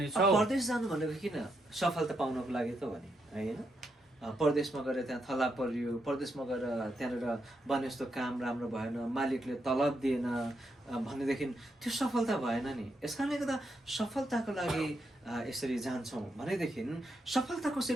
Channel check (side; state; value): both; normal; correlation 0.81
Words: परदेश जानु भनेको किन सफलता पाउनको लागि त भने होइन। परदेशमा गएर त्यहाँ थला परियो, परदेशमा गएर त्यहाँनिर भने जस्तो काम राम्रो भएन, मालिकले तलब दिएन भनेदेखि त्यो सफलता भएन नि। यस कारणले गर्दा सफलताको लागि यसरी जान्छौँ भनेदेखि सफलता